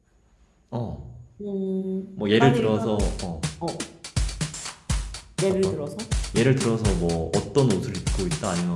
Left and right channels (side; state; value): both; identical; correlation 1.00